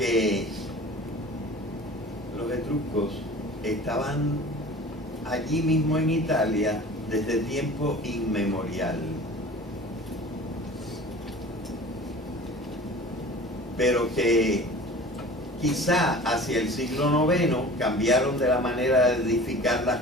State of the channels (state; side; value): normal; both; correlation 0.41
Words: los etruscos estaban allí mismo en Italia desde tiempo inmemorial. Pero que quizá hacia el siglo IX cambiaron de la manera de edificar